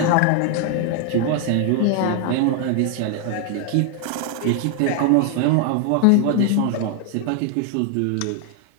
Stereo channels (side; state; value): both; different; correlation 0.00